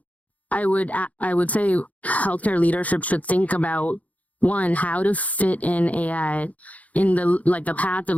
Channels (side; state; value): right; late; 0.071 ms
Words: I would say healthcare leadership should think about, one, how to fit in AI in the path of